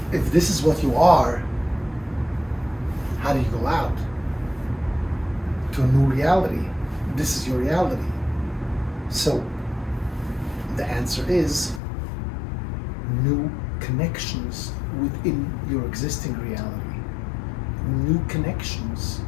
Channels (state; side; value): drops out; right; at 11.8 s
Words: this is what you are, how do you go out to a new reality? This is your reality. So the answer is new connections within your existing reality. New connections.